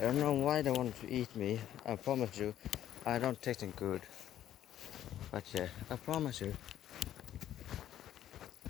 don't know why they want to eat me. I promise you, I don't taste them good. But yeah, I promise you.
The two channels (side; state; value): right; quieter; 11.6 dB